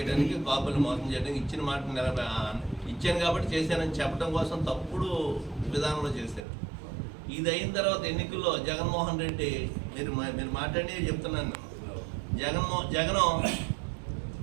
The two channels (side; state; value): left; drops out; at 6.4 s